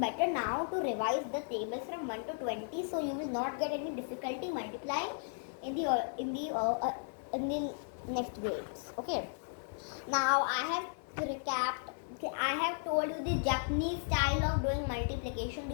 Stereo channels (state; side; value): silent; right; 54 dB below the other